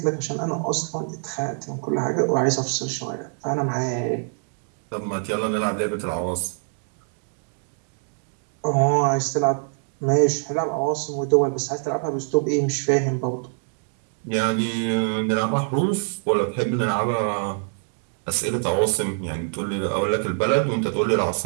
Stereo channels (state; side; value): silent; left; 62 dB below the other